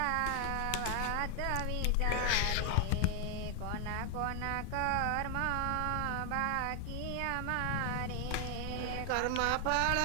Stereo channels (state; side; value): different; both; correlation 0.00